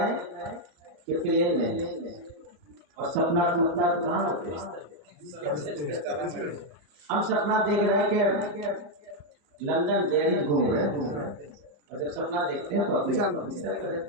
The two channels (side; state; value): left; late; 34 ms